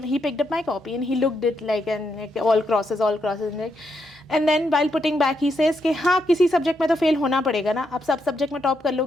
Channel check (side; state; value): both; normal; correlation 0.80